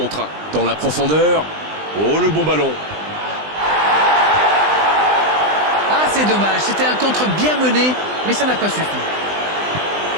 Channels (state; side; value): late; left; 20 ms